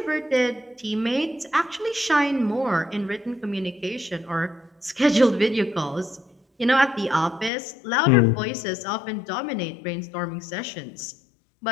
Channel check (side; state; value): right; drops out; at 7.5 s